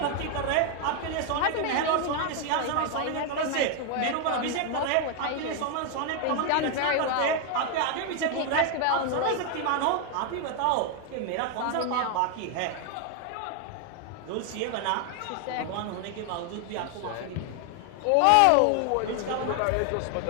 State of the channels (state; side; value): different; both; correlation 0.00